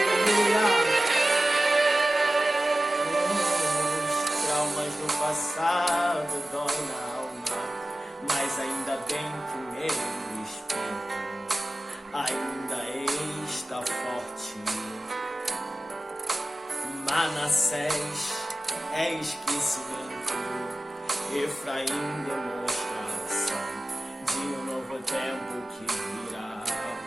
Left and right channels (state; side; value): normal; both; correlation 0.95